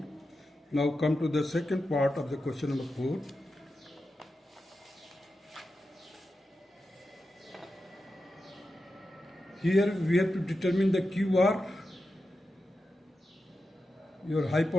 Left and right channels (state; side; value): normal; both; correlation 0.90